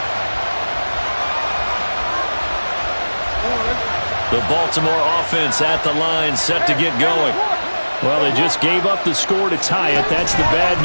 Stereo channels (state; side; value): inverted; both; correlation -1.00